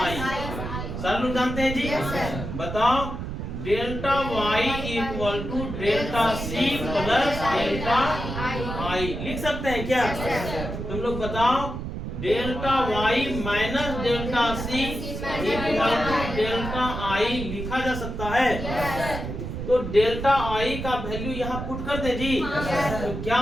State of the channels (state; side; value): noise; right; rumble, 6 dB below the sound